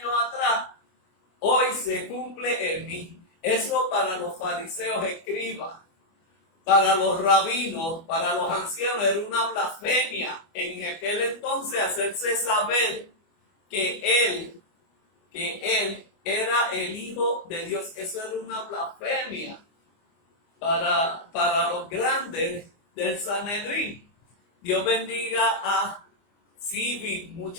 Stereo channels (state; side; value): late; right; 25 ms